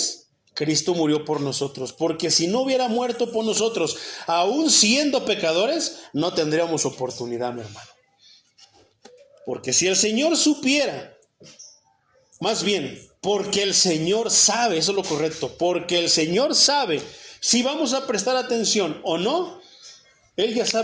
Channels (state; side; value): identical; both; correlation 1.00